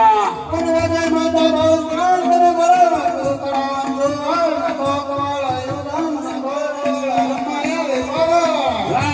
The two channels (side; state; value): both; identical; correlation 1.00